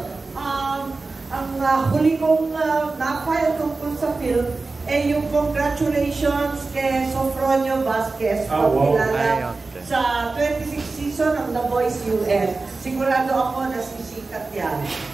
ang huli kong na-file tungkol sa film ay yung congratulations kay Sofronio Vasquez, kilala sa 26 season ng The Voice US. Sigurado ako na sisikat yan.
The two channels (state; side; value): quieter; left; 3.7 dB